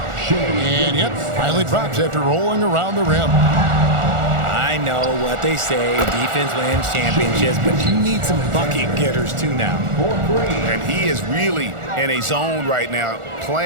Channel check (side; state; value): left; late; 1.4 ms